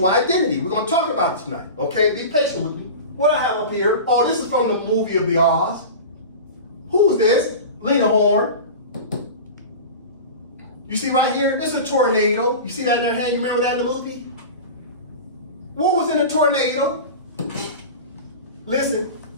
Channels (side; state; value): both; inverted; correlation -0.31